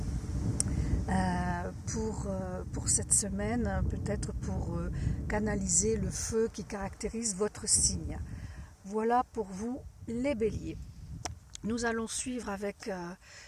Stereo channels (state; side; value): identical; both; correlation 1.00